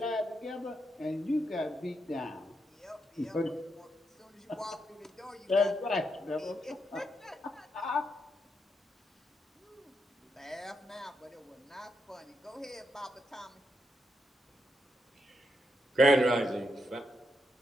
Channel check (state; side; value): normal; both; correlation 0.82